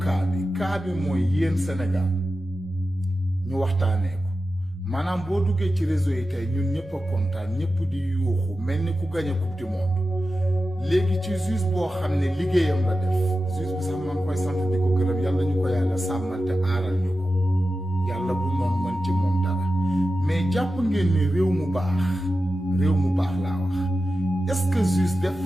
bi mooy yéen Sénégal ñu waxtaanee ko maanaam boo duggee ci réseau yi tey ñun ñëpp a kontaan ñëpp di yuuxu mel ni ku gagné coupe du monde léegi ci juge boo xam ne liggéeyam la def juge bi sax maa ngi koy sant di ko gërëm yàlla ñu ko yàlla sàmmal te aaral ñu ko yàlla bu noonu mën ci moom dara mais jàpp ngeen ni réew mu baax laa wax est-ce que juge def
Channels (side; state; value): both; normal; correlation 0.92